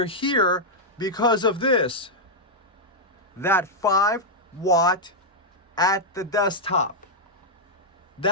here because of this, that 5-watt at the desktop.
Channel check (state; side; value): normal; both; correlation -0.03